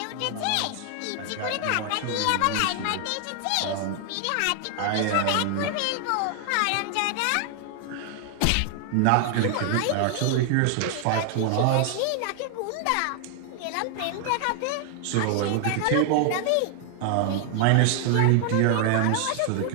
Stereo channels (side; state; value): both; different; correlation 0.00